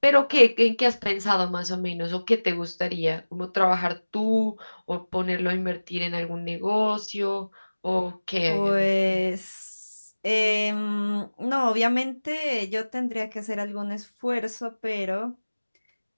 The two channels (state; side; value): inverted; both; correlation -1.00